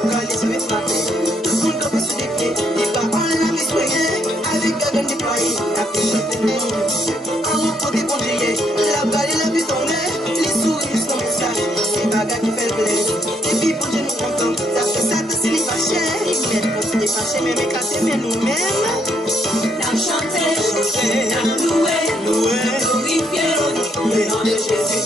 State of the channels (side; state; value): both; normal; correlation 0.72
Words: met ma paix. Tout le monde peut se défier. Les paroles la vie soignée. Avec la gagne déployée. La paix chante le nom de Dieu. En repos des congéliers. La balle et la vie tombée. Les souris juste comme ça. C'est bagarre qui fait le plaisir. Et puis pour Dieu nous contents. Ça fait ça que c'est les fâchés. Ils mettent pour se défâcher. Mais éclater, mais nous-mêmes. N'a chanté, n'a loué, glorifié le nom de Jésus.